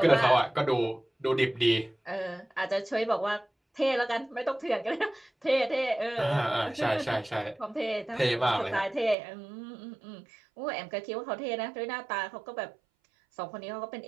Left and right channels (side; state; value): left; drops out; at 9.2 s